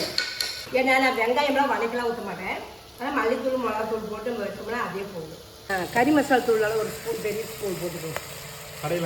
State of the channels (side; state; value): both; identical; correlation 1.00